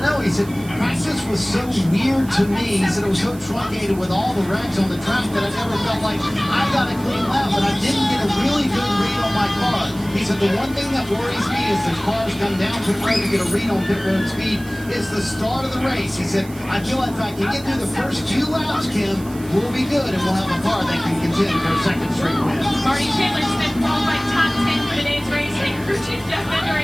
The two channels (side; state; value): right; noise; hiss, 20 dB below the sound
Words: know. He said, practice was so weird to me. He said, it was so truncated with all the wrecks on the track that I never felt like I got a clean lap, but I didn't get a really good read on my car. He said, the one thing that worries me is the cars come down pit road to get a read on pit road speed. It's the start of the race. He said, I feel like if I can get through the first few laps, Kim, we'll be good, and we'll have a car that can contend for a second straight win. Marty Chandler Smith qualified top 10 for today's race, and crew chief Jeff